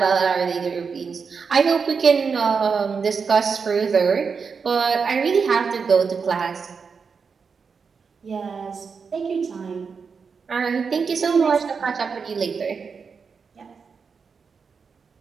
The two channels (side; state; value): left; quieter; 5.6 dB